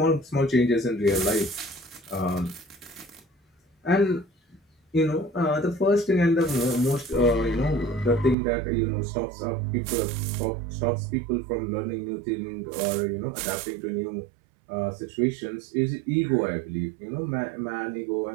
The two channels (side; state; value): left; drops out; at 8.3 s